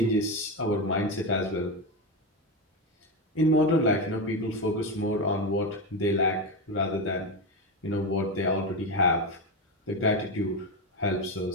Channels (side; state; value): both; normal; correlation 0.14